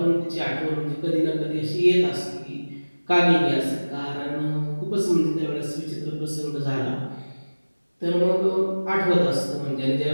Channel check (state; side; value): inverted; both; correlation -1.00